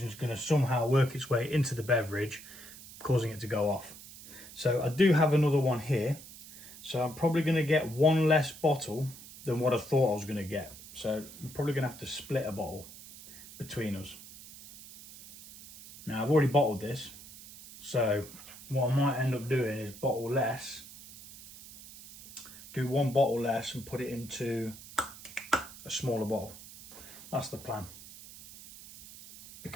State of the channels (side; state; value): right; noise; hiss, 17 dB below the sound